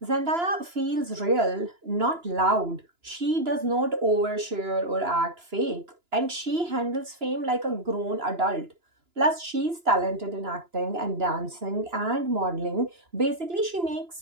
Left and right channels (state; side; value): late; left; 2.9 ms